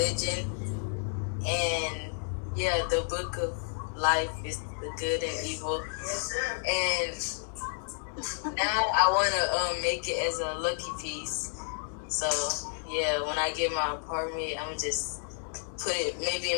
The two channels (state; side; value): silent; right; digital silence